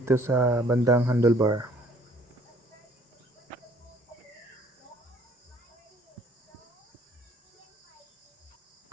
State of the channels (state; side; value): normal; both; correlation 0.59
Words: sa bandang handlebar.